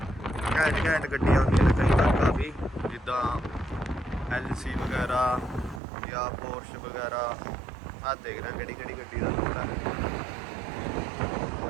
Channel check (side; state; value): left; drops out; at 5.8 s